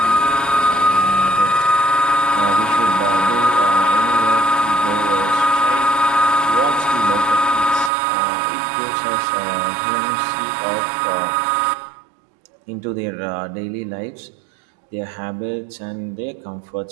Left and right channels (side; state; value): left; drops out; at 7.9 s